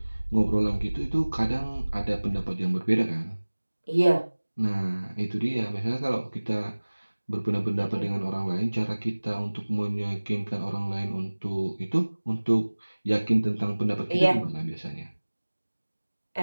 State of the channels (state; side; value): inverted; both; correlation -1.00